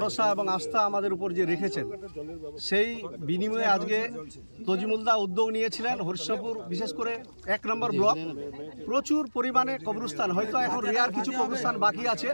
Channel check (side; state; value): both; inverted; correlation -1.00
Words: এবং আস্থা আমাদের উপর যে রেখেছেন, সেই বিনিময়ে আজকে তাজিমুল্লাহ উদ্যোগ নিয়েছিলেন। হরিশ্চন্দ্রপুর বিশেষ করে 1 নম্বর ব্লক প্রচুর পরিমাণে কবরস্থান, হয়তো এখন রেয়ার কিছু কবরস্থান বাকি আছে,